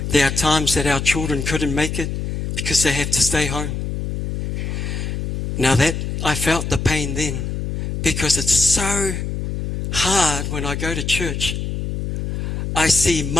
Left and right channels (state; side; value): noise; left; hum, 3 dB below the sound